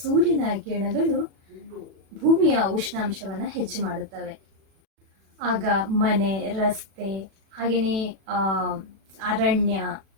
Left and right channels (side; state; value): left; late; 36 ms